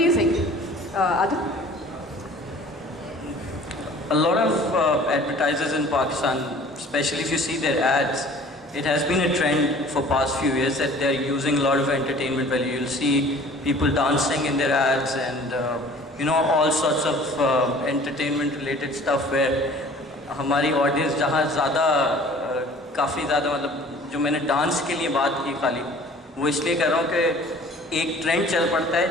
you think, Adil? A lot of advertisers in Pakistan, especially if you see their ads, it has been a trend for past few years that they're using a lot of entertainment value. You'll see people dancing in their ads and all sorts of entertainment related stuff where हमारी audience जहाँ ज़्यादा काफ़ी ज़्यादा मतलब जो मैंने dance के लिए बात की खाली वो इसलिए कर रहा हूँ कि एक ट्रेंड चल पड़ता है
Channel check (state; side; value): normal; both; correlation 0.48